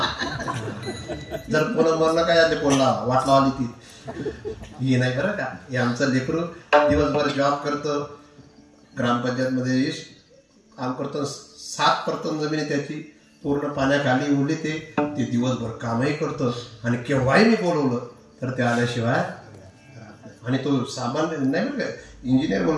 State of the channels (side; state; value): both; identical; correlation 1.00